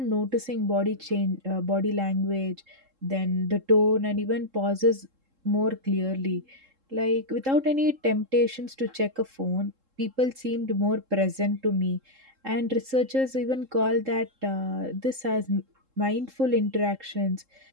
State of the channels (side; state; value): left; late; 3.7 ms